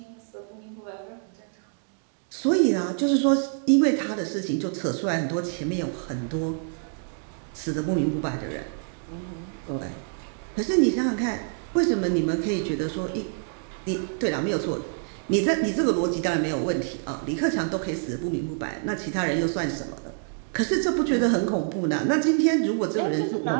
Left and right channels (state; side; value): silent; left; 58 dB below the other